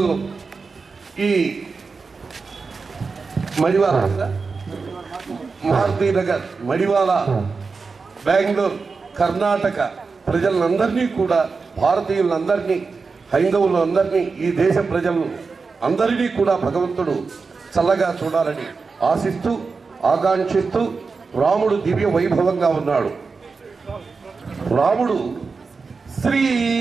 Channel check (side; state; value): left; quieter; 4.6 dB